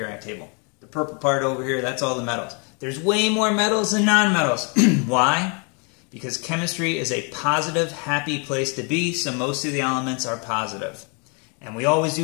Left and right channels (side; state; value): right; quieter; 35.4 dB